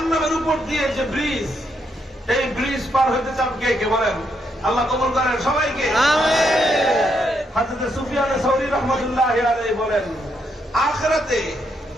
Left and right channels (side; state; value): both; normal; correlation 0.77